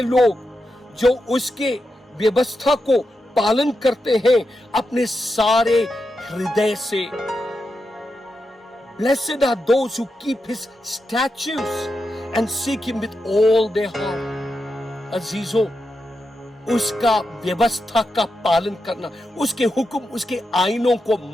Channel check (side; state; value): both; normal; correlation 0.87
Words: लोग जो उसके व्यवस्था को पालन करते हैं अपने सारे हृदय से। Blessed are those who keep his statutes and seek him with all their heart। अजीजों, उसका व्यवस्था का पालन करना, उसके हुक्म, उसके आईनों को